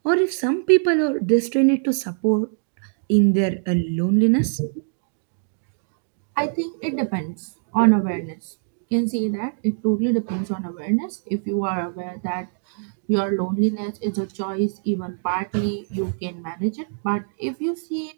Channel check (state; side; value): silent; left; digital silence